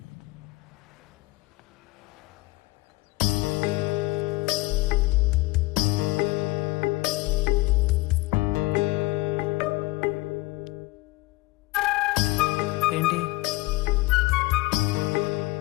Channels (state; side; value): quieter; right; 21.0 dB